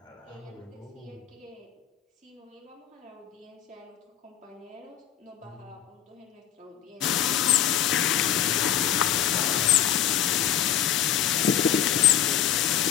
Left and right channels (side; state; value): right; quieter; 10.4 dB